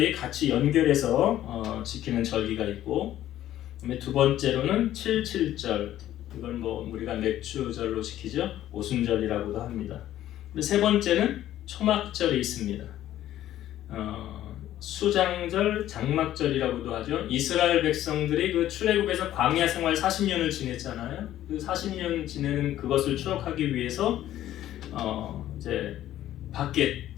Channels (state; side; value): quieter; right; 12.9 dB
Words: 같이 연결해서 지키는 절기가 있고, 그다음에 두 번째로는 77절, 이걸 우리가 맥주절로 지키죠. 오순절이라고도 합니다. 세 번째는 초막절이 있습니다. 수장절, 장막절이라고도 하죠. 이스라엘 백성들이 그 출애굽에서 광야 생활 40년을 지냈잖아요. 그 40년 지내는 그것을 추억하기 위해서 이제 밖에